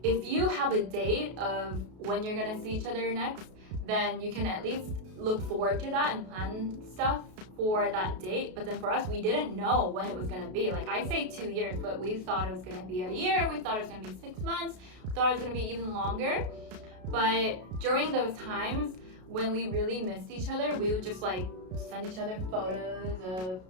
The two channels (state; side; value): late; left; 33 ms